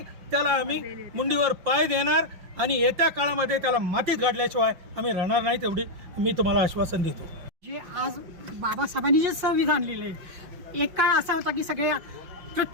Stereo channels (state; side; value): late; left; 5.6 ms